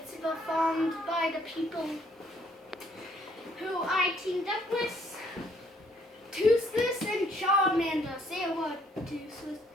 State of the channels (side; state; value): both; normal; correlation 0.65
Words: performed by the people who I teamed up with. Toothless and Charmander. Say a word, Toothless.